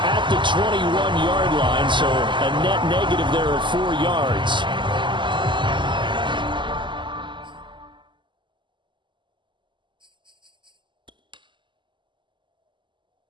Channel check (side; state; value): left; late; 0.23 ms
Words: the 21-yard line, so a net negative there of 4 yards.